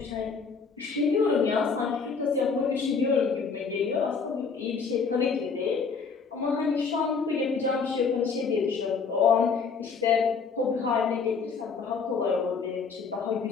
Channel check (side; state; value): right; quieter; 5.4 dB